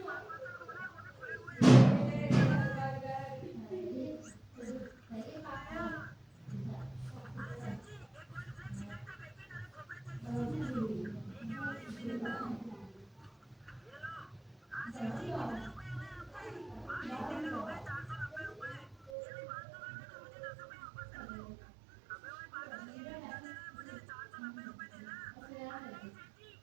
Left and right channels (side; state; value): left; drops out; at 19.1 s